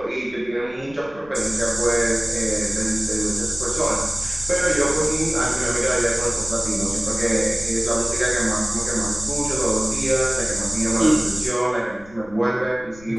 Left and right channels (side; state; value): left; noise; rumble, 22 dB below the sound